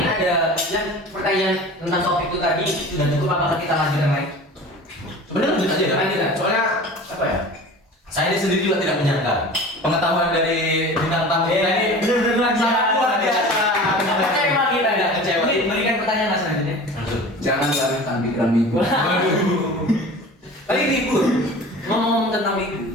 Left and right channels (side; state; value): both; normal; correlation 0.39